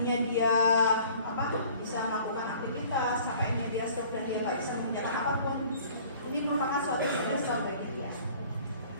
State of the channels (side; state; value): both; inverted; correlation -0.51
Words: dia bisa melakukan aktivitas, sampainya dia stroke dan dia nggak bisa mengerjakan apapun. Ini merupakan suatu stresor bagi dia.